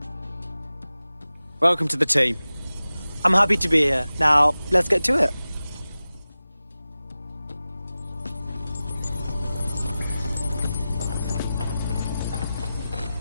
Welcome to the team. I'm happy to be here. Now, let's get to it.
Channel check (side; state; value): both; inverted; correlation -0.96